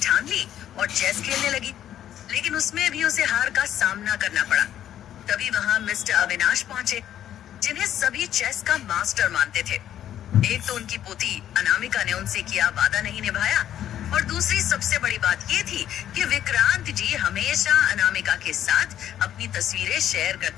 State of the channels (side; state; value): right; quieter; 11.1 dB